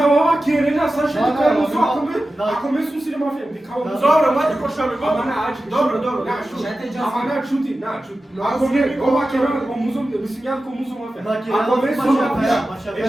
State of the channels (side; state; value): both; normal; correlation 0.94